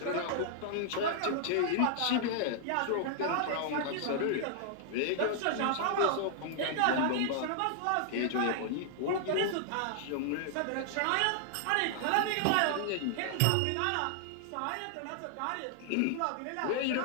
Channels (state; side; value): different; both; correlation -0.01